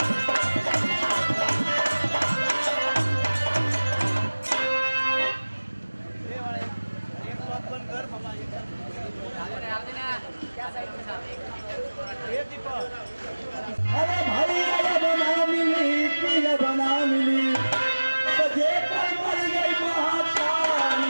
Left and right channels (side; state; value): both; inverted; correlation -1.00